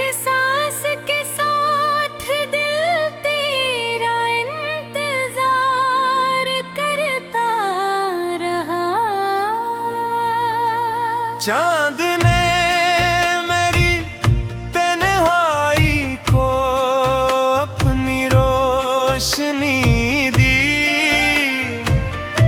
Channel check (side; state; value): both; identical; correlation 1.00